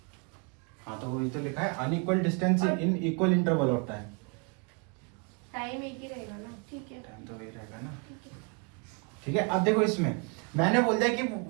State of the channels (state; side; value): quieter; left; 33.7 dB